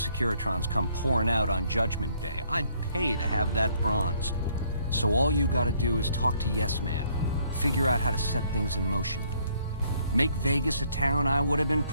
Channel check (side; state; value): both; inverted; correlation -0.66